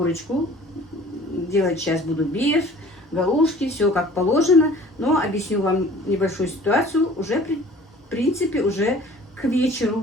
Делать сейчас буду беф, галушки, все как положено. Но объясню вам небольшую ситуацию. Уже, в принципе, уже к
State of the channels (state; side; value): normal; both; correlation 0.49